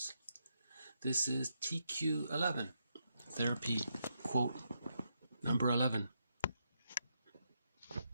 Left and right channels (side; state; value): both; inverted; correlation -0.81